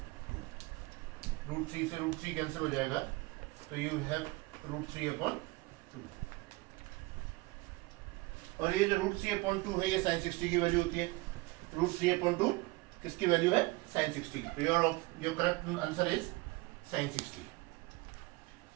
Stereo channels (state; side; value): quieter; left; 23.1 dB